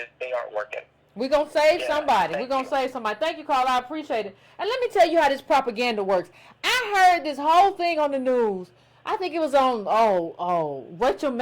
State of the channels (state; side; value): identical; both; correlation 1.00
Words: They aren't working. We're going to save somebody. We're going to save somebody. Thank you, Carl. I appreciate it. And let me tell you how this propaganda works. I heard this whole thing on the news. I think it was on, Rachel